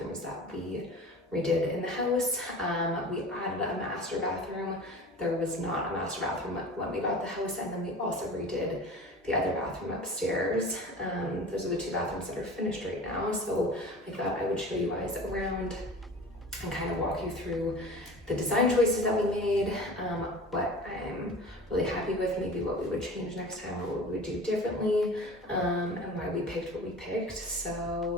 that we redid in the house. We added a master bathroom. There was not a master bathroom when we got the house, and then we also redid the other bathroom upstairs. Those are the two bathrooms that are finished right now. So I thought I would show you guys around and kind of walk you through the design choices that we made, what I'm really happy with, maybe what we would change next time or what we would do differently, and why we picked what we picked.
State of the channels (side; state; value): both; normal; correlation 0.38